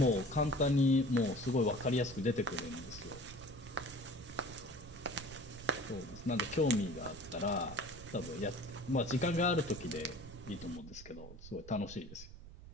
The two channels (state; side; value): noise; right; rumble, 15 dB below the sound